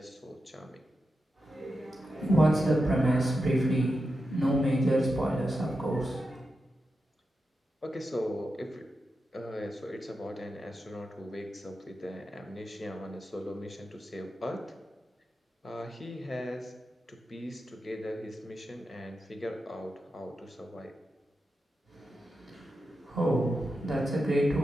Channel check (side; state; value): both; normal; correlation 0.89